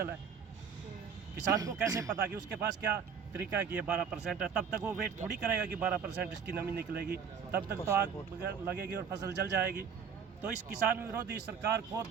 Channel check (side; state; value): left; quieter; 6.8 dB